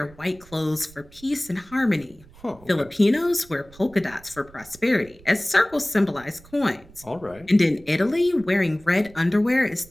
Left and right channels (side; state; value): right; noise; rumble, 23 dB below the sound